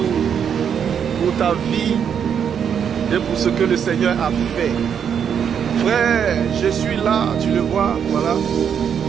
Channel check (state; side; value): quieter; left; 7.9 dB